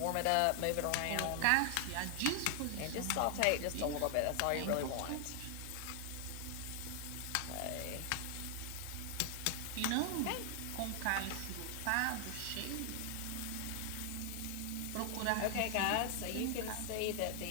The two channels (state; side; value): different; both; correlation 0.00